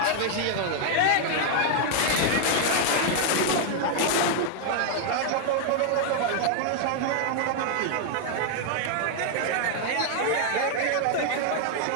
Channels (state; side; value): different; both; correlation 0.00